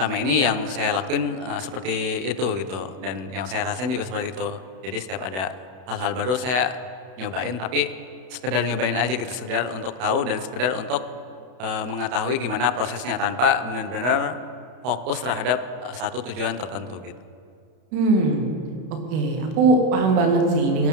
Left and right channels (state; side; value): late; left; 32 ms